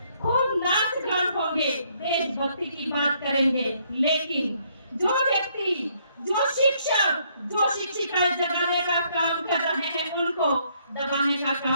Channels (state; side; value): inverted; both; correlation -0.69